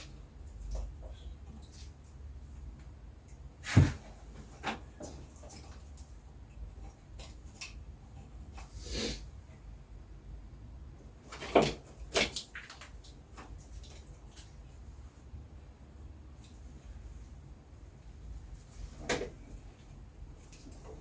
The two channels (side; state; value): both; identical; correlation 1.00